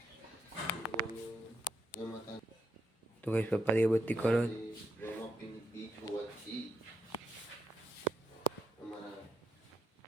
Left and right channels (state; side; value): normal; both; correlation 0.80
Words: તો ગઈશ પપ્પા દીવબત્તી કરો.